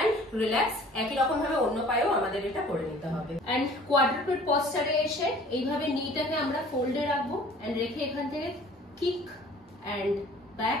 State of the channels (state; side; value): normal; both; correlation 0.50